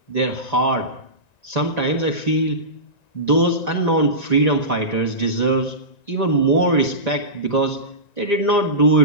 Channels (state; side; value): late; right; 1.9 ms